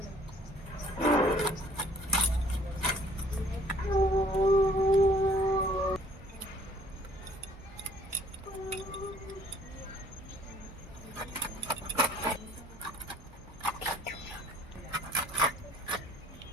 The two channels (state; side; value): normal; both; correlation 0.57